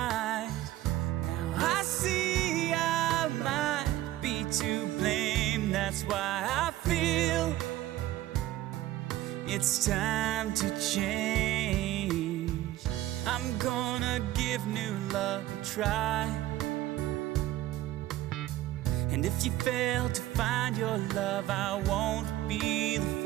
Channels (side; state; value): left; quieter; 15.1 dB